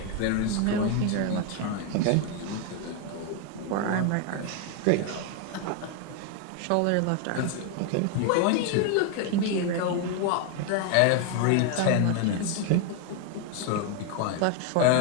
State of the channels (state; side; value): different; both; correlation 0.01